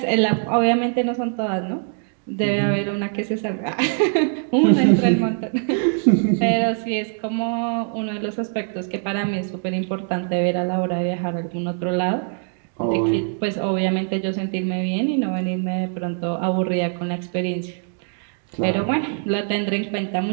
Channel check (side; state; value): left; silent; 56 dB below the other